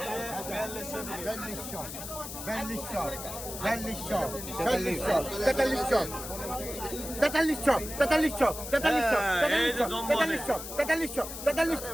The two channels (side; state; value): left; noise; hiss, 9 dB below the sound